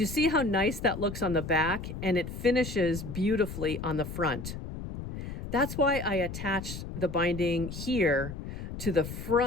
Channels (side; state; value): left; noise; rumble, 8 dB below the sound